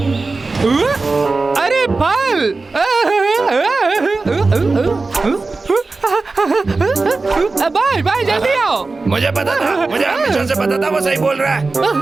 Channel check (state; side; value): quieter; left; 3.7 dB